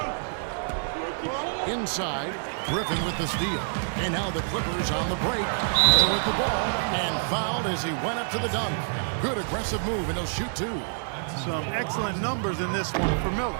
Inside, Griffin with the steal. And now the Clippers on the break. Miller with the ball and fouled as he went up to the dunk. Good aggressive move, and he'll shoot 2. Some excellent numbers in this one for Miller.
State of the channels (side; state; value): left; silent; digital silence